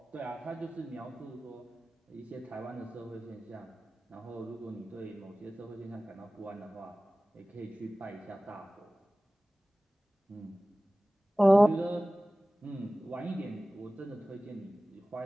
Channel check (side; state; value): both; normal; correlation 0.98